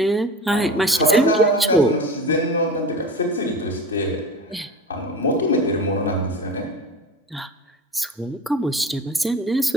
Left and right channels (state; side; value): normal; both; correlation 0.34